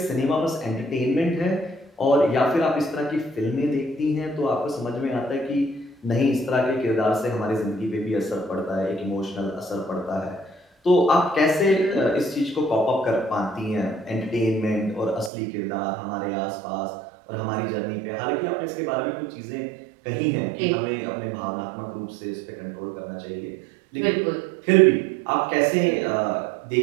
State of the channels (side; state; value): left; drops out; at 15.3 s